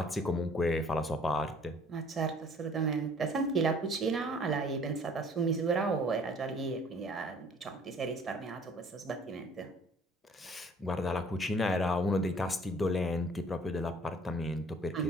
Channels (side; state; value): both; normal; correlation 0.55